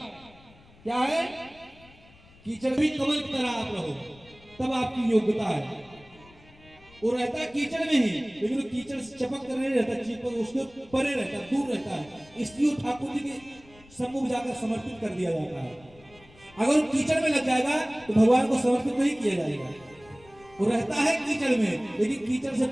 क्या है? कीचड़ भी कमल की तरह आप रहो, तब आपकी योग्यता है। वो रहता है कीचड़ में ही, लेकिन वो कीचड़ से चपक कर नहीं रहता, चिपक उसके परे रहता है, दूर रहता है। इसलिए ठाकुर जी के सम्मुख जाकर समर्पित कर दिया जाता है। अगर वो कीचड़ में लग जाएगा तो भगवान को समर्पित नहीं किया जाएगा। वो रहता है कीचड़ में, लेकिन कीचड़ से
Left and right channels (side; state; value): left; noise; rumble, 25 dB below the sound